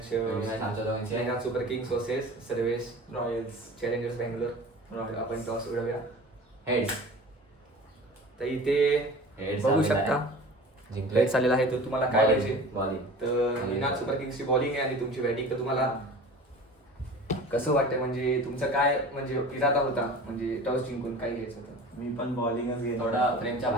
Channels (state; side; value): normal; both; correlation 0.39